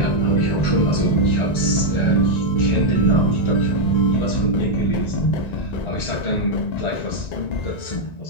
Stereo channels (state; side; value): late; right; 1.9 ms